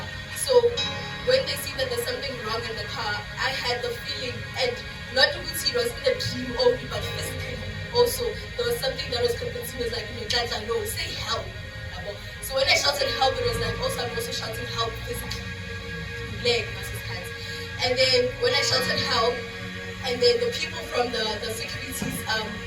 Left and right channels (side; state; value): both; identical; correlation 1.00